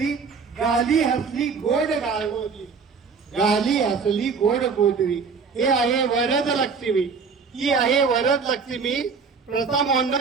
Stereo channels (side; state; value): left; quieter; 5.3 dB